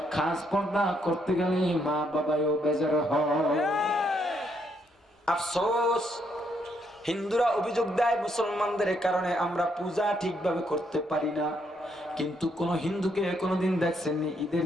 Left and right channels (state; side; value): normal; both; correlation 0.74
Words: খাস পর্দা করতে গেলে মা বাবাও বেজার হয়। আফসোস, হিন্দুরা অভিযোগ দেয় মুসলমানদের কারণে আমরা পূজা ঠিকভাবে করতে পারি না। কিন্তু কোন হিন্দুকে কোনদিন দেখছেননি ঈদের